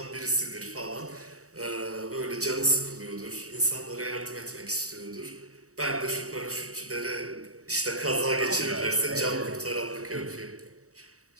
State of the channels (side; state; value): left; late; 0.65 ms